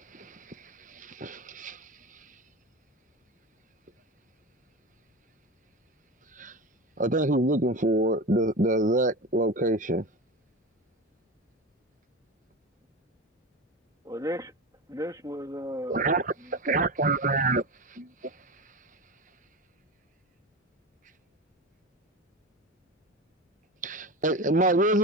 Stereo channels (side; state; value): both; normal; correlation 0.25